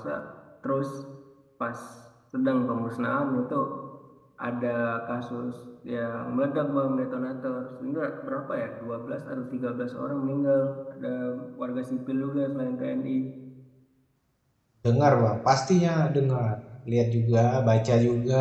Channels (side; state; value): both; identical; correlation 1.00